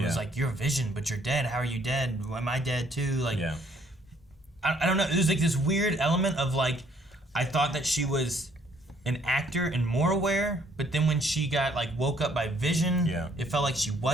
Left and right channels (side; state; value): both; normal; correlation 0.64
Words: was like, "You're Vision, but you're dead. How are you dead? Am I dead too?" Like, I don't know. There's like this weird element of like, I thought that she was an actor and more aware, but then when she got like woke up by Vision, it felt like she